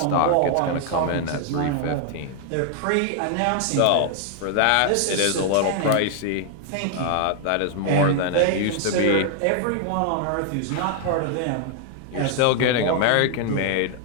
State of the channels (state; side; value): different; both; correlation 0.00